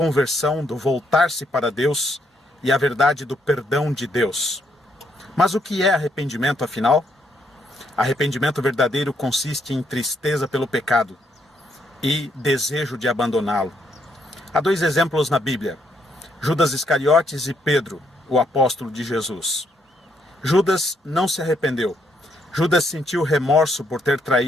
do voltar-se para Deus, e a verdade do perdão de Deus. Mas o que é arrependimento, afinal? Arrependimento verdadeiro consiste em tristeza pelo pecado e desejo de abandoná-lo. Há dois exemplos na Bíblia: Judas Iscariotes e Pedro, o apóstolo de Jesus. Judas não se arrependeu. Judas sentiu remorso por ter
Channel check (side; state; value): both; normal; correlation 0.74